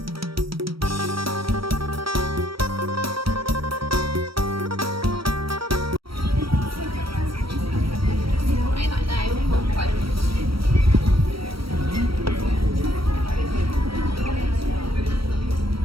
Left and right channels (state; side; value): late; left; 0.75 ms